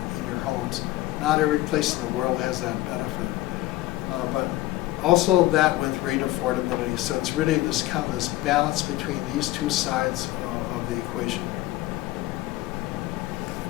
in your homes. Not every place in the world has that benefit, but also that with rate affordability. So it's really this kind of this balance between these two sides of the equation.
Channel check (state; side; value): quieter; right; 17.1 dB